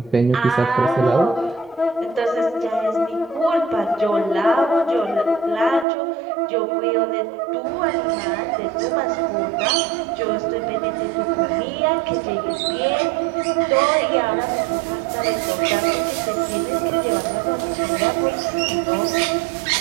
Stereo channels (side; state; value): left; drops out; at 5.9 s